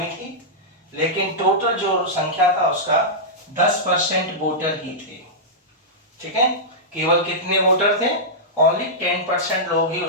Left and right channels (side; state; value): both; normal; correlation -0.11